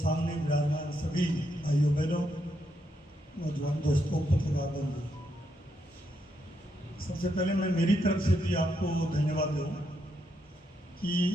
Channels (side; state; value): both; normal; correlation 0.79